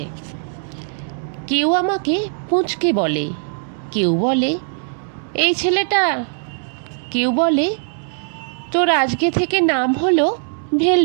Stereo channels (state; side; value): silent; left; digital silence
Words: কেউ আমাকে পুঁচকে বলে, কেউ বলে এই ছেলেটা, কেউ বলে তোর আজকে থেকে নাম হলো